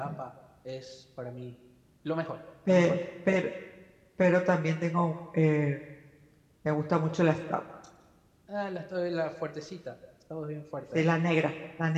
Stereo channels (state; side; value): identical; both; correlation 1.00